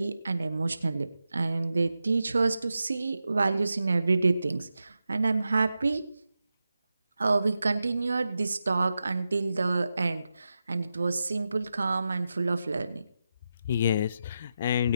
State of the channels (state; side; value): inverted; both; correlation -0.90